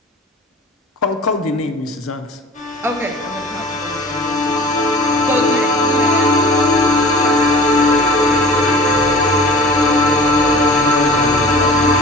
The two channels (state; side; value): normal; both; correlation 0.43